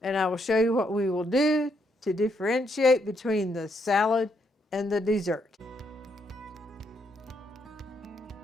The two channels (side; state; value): both; normal; correlation 0.76